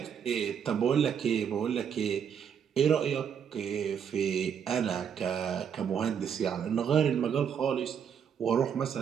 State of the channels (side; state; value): left; quieter; 7.8 dB